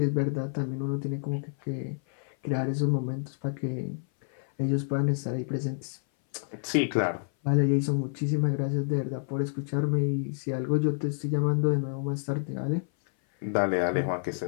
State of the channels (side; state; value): right; silent; 57 dB below the other